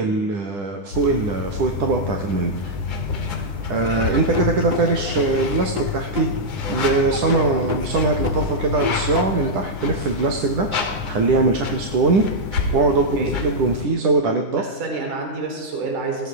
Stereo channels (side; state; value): left; late; 9.6 ms